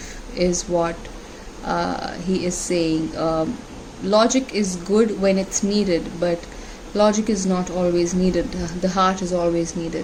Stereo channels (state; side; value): identical; both; correlation 1.00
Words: is what he is saying. Logic is good when it's needed, but logic is not always needed. The heart is always